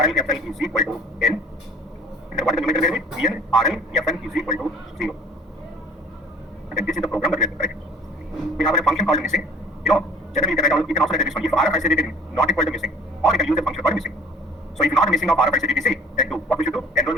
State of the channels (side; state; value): both; normal; correlation 0.50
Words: is equal to N. And what is the numerical variable? ENRLFN is equal to 0. And this is the program that we have to write. We have a function called missing. Generally you can also write this one. If RFICTC is not equal to missing, or you can use a function called missing. So if not missing of RFICTC, then do what we should do?